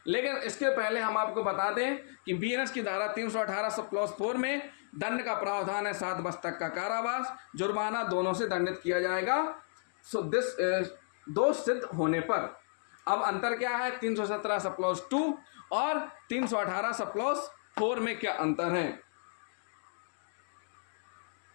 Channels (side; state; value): right; silent; digital silence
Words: लेकिन इसके पहले हम आपको बता दें कि BNS की धारा 318 सब क्लॉज 4 में दंड का प्रावधान है 7 वर्ष तक का कारावास, जुर्माना दोनों से दंडित किया जाएगा दोष सिद्ध होने पर। अब अंतर क्या है 317 सब क्लॉज 2 और 318 सब क्लॉज 4 में क्या अंतर है?